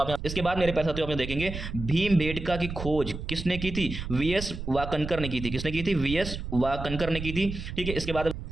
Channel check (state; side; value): noise; right; rumble, 7 dB below the sound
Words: इसके बाद मेरे पैसा आप देखेंगे भीमबेटका की खोज किसने की थी? वीएस वाकनकर ने की थी। किसने की थी? वीएस वाकनकर ने की थी। ठीक है, इसके बाद